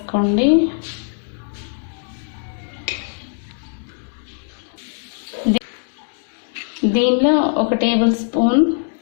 దీనిలో 1 టేబుల్ స్పూన్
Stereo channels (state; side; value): silent; right; 65 dB below the other